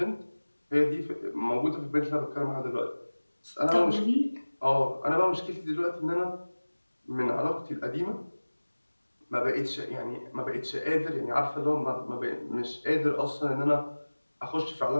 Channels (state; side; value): inverted; both; correlation -1.00